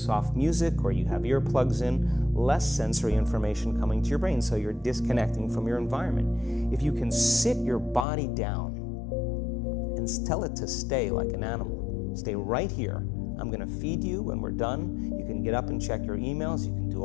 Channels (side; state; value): right; drops out; at 8.1 s